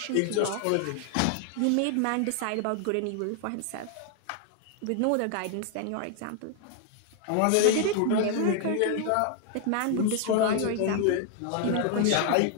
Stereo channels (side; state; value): both; different; correlation 0.00